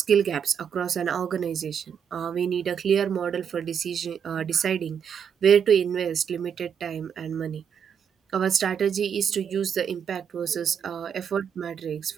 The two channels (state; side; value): quieter; left; 7.7 dB